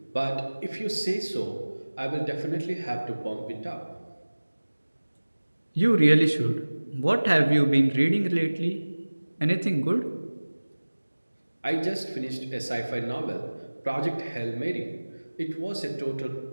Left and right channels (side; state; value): both; inverted; correlation -1.00